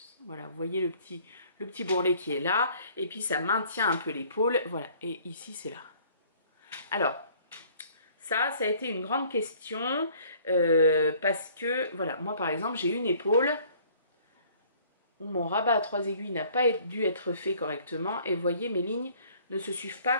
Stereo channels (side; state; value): both; inverted; correlation -0.56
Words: Voilà, vous voyez le petit bourrelet qui est là. Et puis, ça maintient un peu l'épaule. Voilà, et ici, c'est là. Alors, ça a été une grande question. Parce que, voilà, moi, par exemple, j'ai une épaule où mon rabat à 3 aiguilles n'a pas dû être fait correctement. Et vous voyez, mes lignes ne se suivent pas